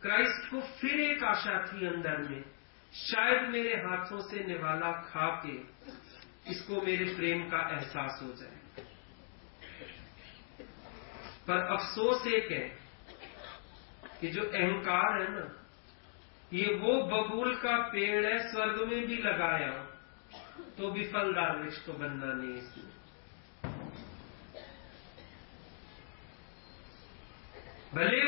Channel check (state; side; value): silent; right; 52 dB below the other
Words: क्राइस्ट को फिर एक आशा थी अंदर में, शायद मेरे हाथों से निवाला खा के इसको मेरे प्रेम का एहसास हो जाए। पर अफसोस एक है कि जो अहंकार है ना, ये वो बबूल का पेड़ है, स्वर्ग में भी लगाया हो तो भी फलदार वृक्ष तो बनना नहीं इसमें। भले